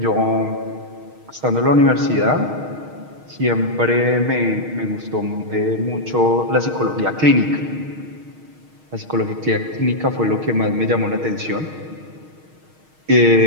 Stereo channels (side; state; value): left; late; 6.4 ms